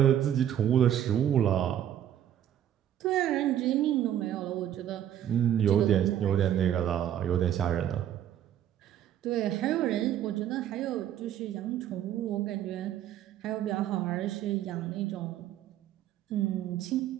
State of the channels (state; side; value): quieter; left; 10.8 dB